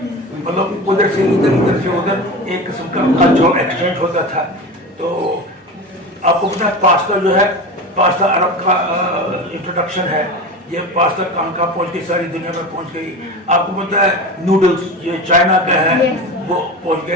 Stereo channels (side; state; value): both; normal; correlation 0.28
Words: मतलब उधर से इधर, इधर से उधर एक किस्म का कल्चरल एक्सचेंज होता था। तो आपको पता है पास्ता जो है, पास्ता अरब का इंट्रोडक्शन है। ये पास्ता कहाँ कहाँ पहुँच गई, सारी दुनिया में पहुँच गई। आपको पता है नूडल्स ये चाइना का है, वो पहुँच